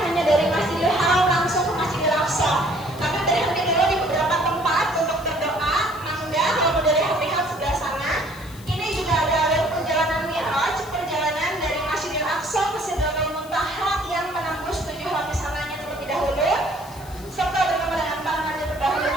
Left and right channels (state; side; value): noise; left; hiss, 20 dB below the sound